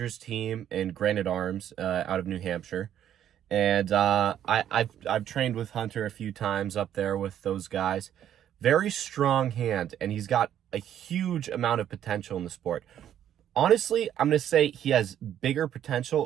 team and Granite Arms out of New Hampshire, and I've trained with Hunter a few times up there with those guys. Very strong hand, and he's got a huge amount of potential in the sport. Honestly, I'm gonna say he has bigger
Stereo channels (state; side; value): quieter; left; 10.5 dB